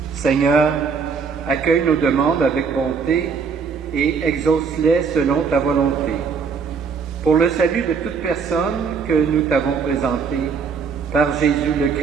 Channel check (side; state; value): left; quieter; 5.7 dB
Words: Seigneur, accueille nos demandes avec bonté et exauce-les selon ta volonté. Pour le salut de toute personne que nous t'avons présentée, par Jésus le